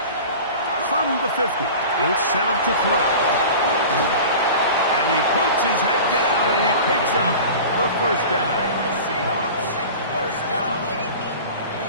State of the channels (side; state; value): both; inverted; correlation -0.36